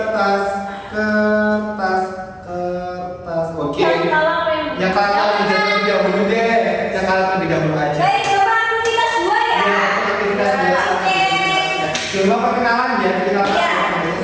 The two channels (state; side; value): identical; both; correlation 1.00